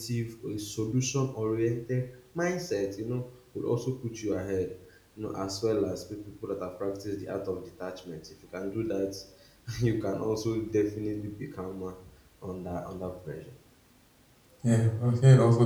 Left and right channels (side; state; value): both; identical; correlation 1.00